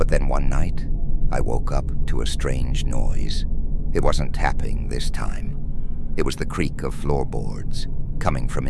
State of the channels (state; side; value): identical; both; correlation 1.00